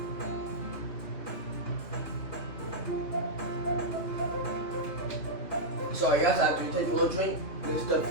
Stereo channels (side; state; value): right; late; 3.2 ms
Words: So I guess I have to take a little drink. This stuff